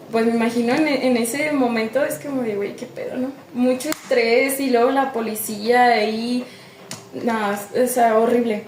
pues me imagino en ese momento es como de güey, qué pedo, ¿no? Mucho estrés y luego la policía ahí, no, o sea, horrible.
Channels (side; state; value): both; identical; correlation 1.00